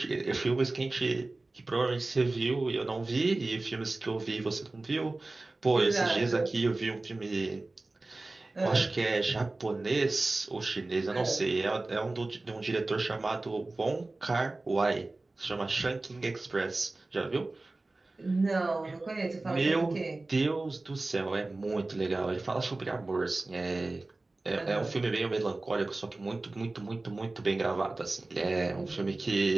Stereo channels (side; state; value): left; quieter; 3.1 dB